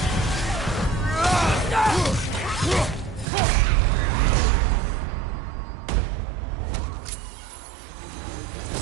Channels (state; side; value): drops out; left; at 3.2 s